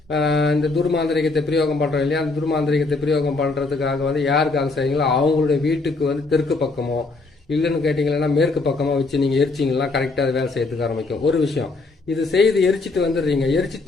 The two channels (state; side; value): quieter; right; 3.6 dB